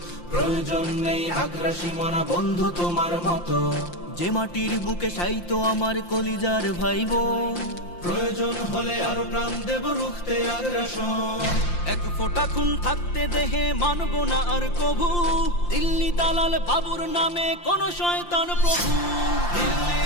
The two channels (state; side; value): late; right; 5.8 ms